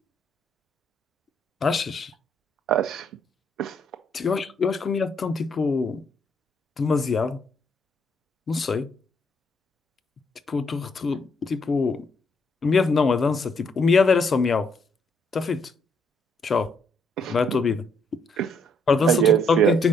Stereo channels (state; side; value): normal; both; correlation 0.71